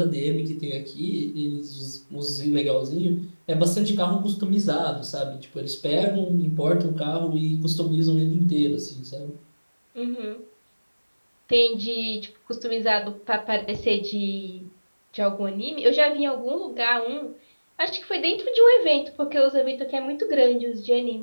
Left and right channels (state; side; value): inverted; both; correlation -1.00